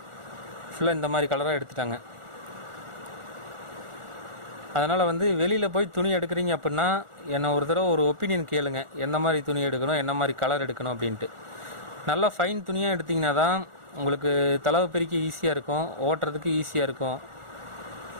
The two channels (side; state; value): left; late; 1.4 ms